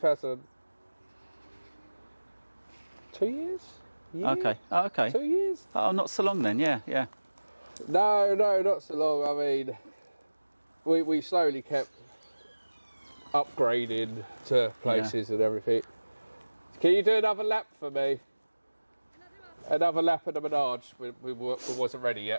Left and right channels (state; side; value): inverted; both; correlation -1.00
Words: 2 years? Year? Okay. Oh, okay. 2 years? Oh, not so long then. Yeah. No, not so long. I mean, we slowly kept upgrading to places and everything. Can you do another lap for me? Another lap of the menage. We wasn't ready